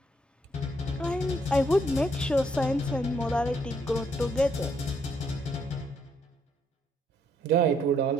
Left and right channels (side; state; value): both; normal; correlation 0.71